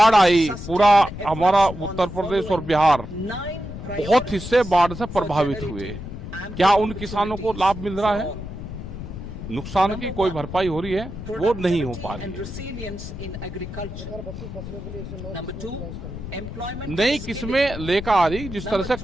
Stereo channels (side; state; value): left; noise; rumble, 9 dB below the sound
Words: आई, पूरा हमारा उत्तर प्रदेश और बिहार बहुत हिस्से बाढ़ से प्रभावित हुए। क्या उन किसानों को लाभ मिल रहा है? नुकसान की कोई भरपाई हो रही है? वो नहीं हो पा रही है। नई किस्में लेकर आ रही, जिस तरह से